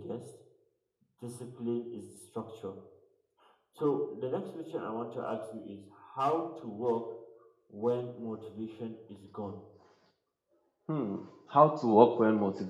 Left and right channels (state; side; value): identical; both; correlation 1.00